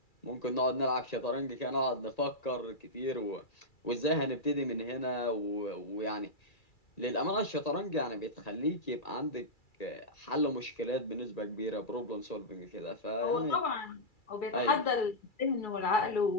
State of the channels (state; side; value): late; right; 2.3 ms